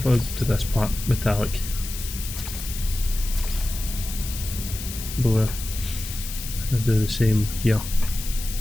if I do this part metallic? Blue. I'll do the same here.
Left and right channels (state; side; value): noise; left; hiss, 9 dB below the sound